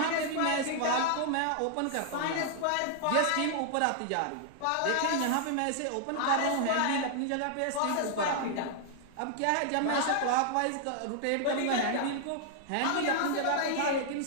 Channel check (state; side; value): different; both; correlation 0.00